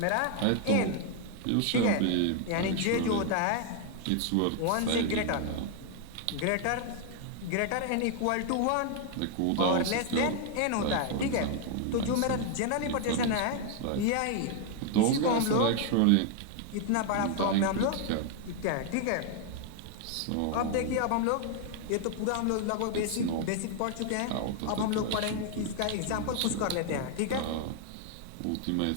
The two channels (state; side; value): different; both; correlation 0.00